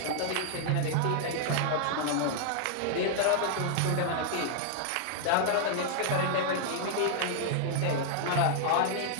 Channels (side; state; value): both; different; correlation -0.01